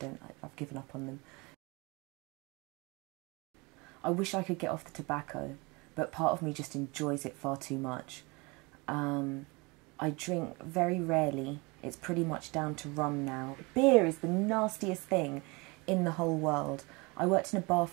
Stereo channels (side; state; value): left; quieter; 26.7 dB